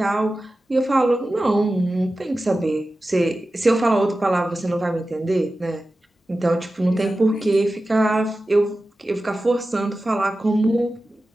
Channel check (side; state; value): both; normal; correlation 0.94